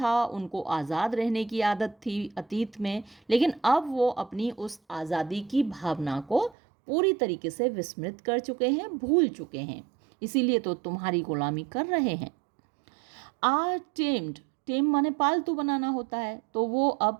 उनको आज़ाद रहने की आदत थी अतीत में, लेकिन अब वो अपनी उस आज़ादी की भावना को पूरी तरीके से विस्मृत कर चुके हैं, भूल चुके हैं, इसीलिए तो तुम्हारी गुलामी कर रहे हैं। आर टेम्ड, टेम माने पालतू बनाना होता है, तो वो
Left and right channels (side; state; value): left; drops out; at 6.6 s